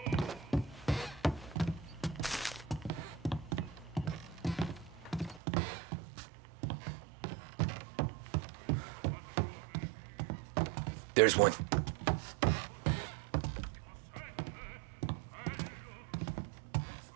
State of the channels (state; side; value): drops out; left; at 5.4 s